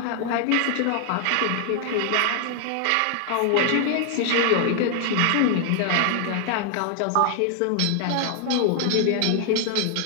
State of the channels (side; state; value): both; different; correlation 0.00